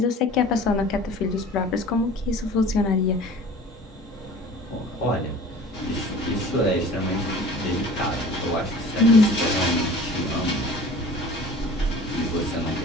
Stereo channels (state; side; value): normal; both; correlation 0.44